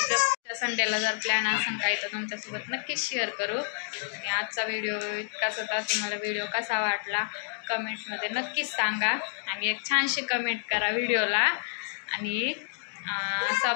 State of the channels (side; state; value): right; silent; digital silence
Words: संडेला जर प्लॅन असेल काही तर तुमच्यासोबत नक्कीच शेअर करू. आणि आजचा व्हिडिओ इतकाच होता. तुम्हाला व्हिडिओ कसा वाटला कमेंटमध्ये नक्कीच सांगा. आणि एक छानशी कमेंट करा व्हिडिओला. आणि